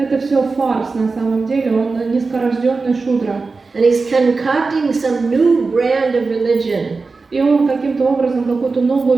все фарс на самом деле, он низкорожденный шудра. And he's concocting some new brand of religion. И он каким-то образом какую-то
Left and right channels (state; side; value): quieter; left; 4.1 dB